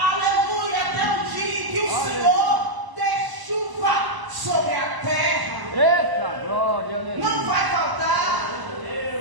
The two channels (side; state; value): left; late; 1.0 ms